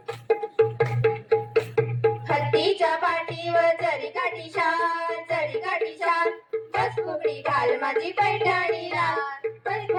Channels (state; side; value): identical; both; correlation 1.00